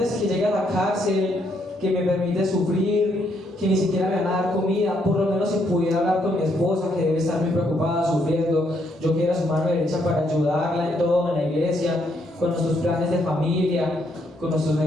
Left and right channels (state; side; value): normal; both; correlation 0.73